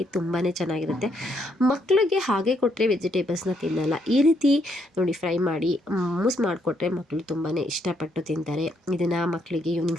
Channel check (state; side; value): normal; both; correlation 0.74